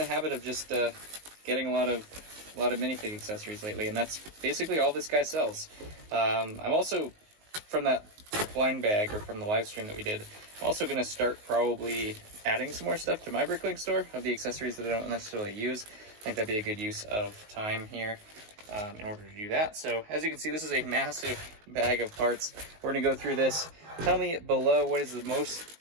of just getting a lot of minifig accessories lately, and that's basically all this guy sells. I'm also from that blind bag, or from the live stream that we did, I'm also going to start probably adding some more stuff to my Bricklink store of the accessories that I don't necessarily use. I think that'd be a good use of time here in order to do that. So as you can see, this is a massive bag of parts. We're going to go through this. Tell me below what is the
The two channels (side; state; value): left; late; 19 ms